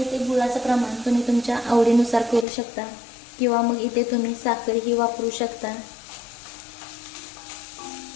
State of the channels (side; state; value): right; drops out; at 2.5 s